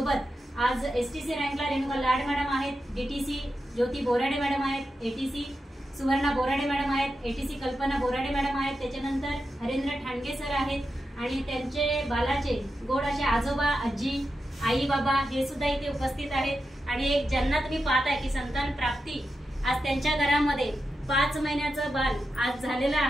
आज एसटीसी रँकला रेणुका लाड मॅडम आहेत, डीटीसी ज्योती बोराडे मॅडम आहेत, एटीसी सुवर्णा बोराडे मॅडम आहेत, एटीसी कल्पना बोराडे मॅडम आहेत, त्याच्यानंतर हरेंद्र ठाणगे सर आहेत आणि त्यांचे बालाचे गोड असे आजोबा आजी आई बाबा हे सुद्धा इथे उपस्थित आहेत। आणि एक ज्यांना तुम्ही पाहताय की संतान प्राप्ती आज त्यांच्या घरामध्ये 5 महिन्याचं बाल आज झालेलं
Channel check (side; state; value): both; normal; correlation 0.89